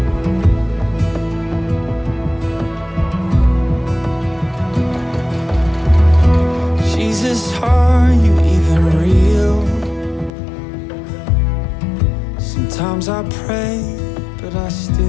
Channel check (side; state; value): right; drops out; at 10.3 s